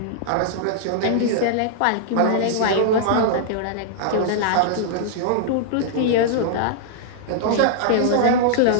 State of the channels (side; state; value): both; different; correlation -0.01